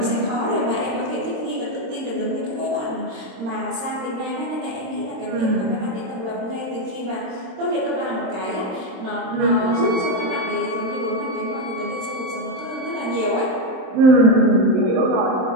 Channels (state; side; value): late; left; 26 ms